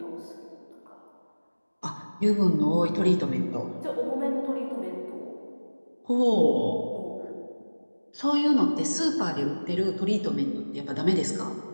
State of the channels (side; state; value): both; inverted; correlation -1.00